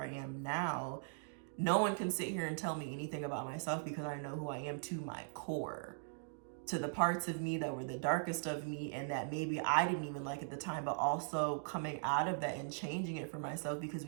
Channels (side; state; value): left; silent; digital silence